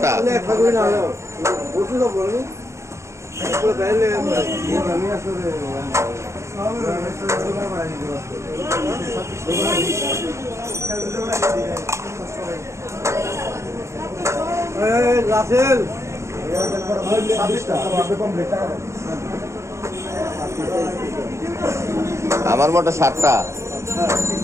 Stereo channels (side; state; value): left; late; 0.14 ms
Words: আমার মোটা 7টা।